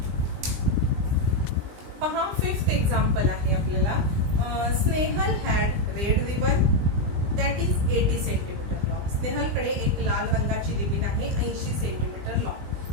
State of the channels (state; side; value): late; left; 20 ms